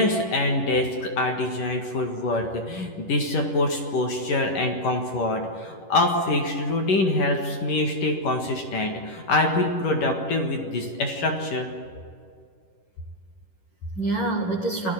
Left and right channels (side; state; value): right; late; 11 ms